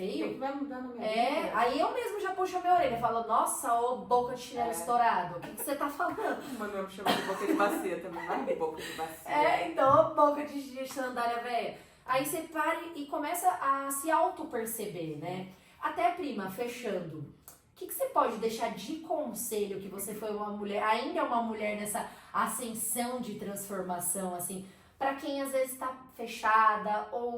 que vai mudar na minha vida? Aí eu mesmo já puxo a minha orelha e falo, nossa, ô boca de chinelo estourado, o que você tá falando? O Manuel me chama de boca de bacia também, não é boca de bacia. Então, ô boca de sandália velha. Aí você para e começa a se auto-perceber, né? Até, prima, fechando, o que você pode deixar de conselho que você foi uma mulher, ainda é uma mulher nessa ascensão de transformação, assim, pra quem às vezes tá fechada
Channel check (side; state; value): both; identical; correlation 1.00